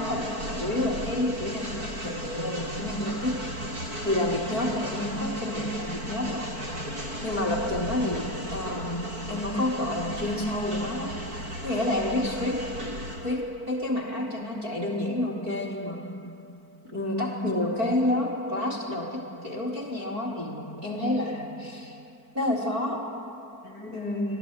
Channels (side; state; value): left; late; 4.5 ms